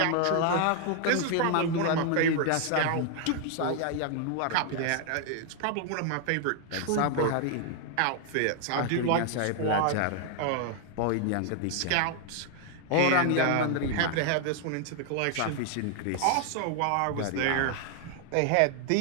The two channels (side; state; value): both; different; correlation 0.00